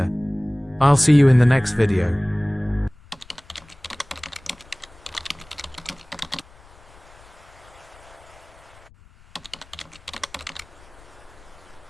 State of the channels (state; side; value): noise; left; rumble, 25 dB below the sound